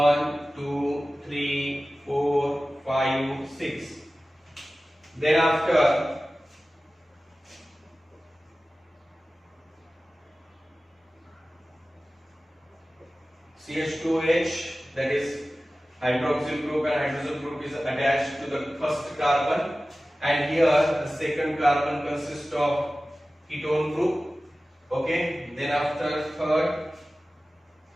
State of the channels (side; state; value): both; normal; correlation 0.96